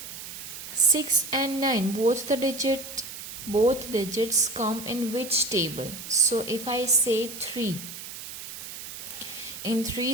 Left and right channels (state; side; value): noise; right; hiss, 10 dB below the sound